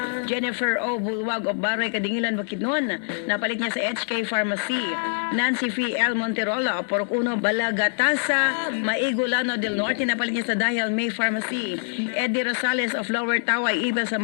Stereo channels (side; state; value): right; silent; digital silence